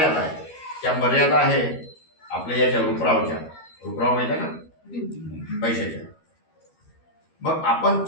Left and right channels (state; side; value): late; right; 13 ms